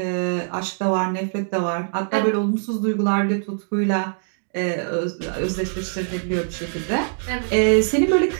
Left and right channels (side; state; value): left; silent; digital silence